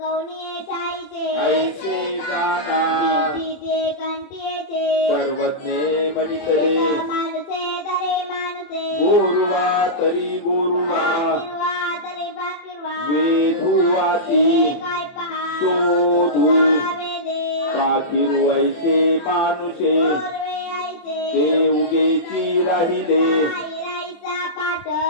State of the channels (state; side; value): late; right; 24 ms